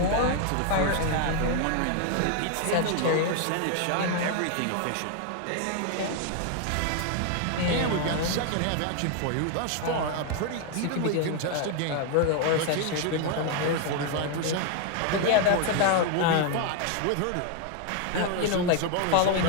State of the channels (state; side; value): different; both; correlation 0.00